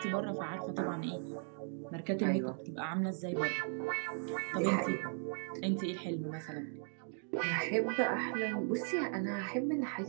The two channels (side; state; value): left; silent; 53 dB below the other